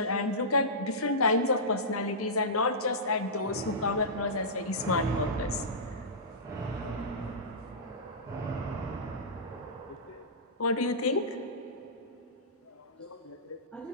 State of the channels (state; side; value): normal; both; correlation -0.18